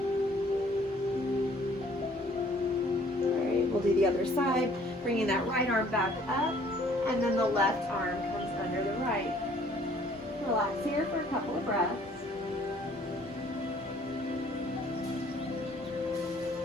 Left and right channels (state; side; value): normal; both; correlation 0.58